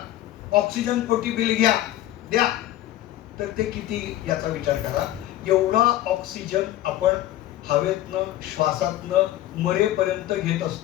ऑक्सिजन पोटी बिल घ्या द्या, तर ते किती याचा विचार करा. एवढा ऑक्सिजन आपण हवेतनं श्वासातनं मरेपर्यंत घेत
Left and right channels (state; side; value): quieter; right; 14.0 dB